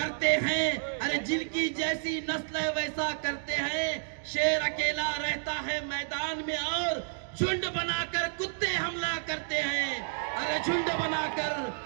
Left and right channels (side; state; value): left; silent; digital silence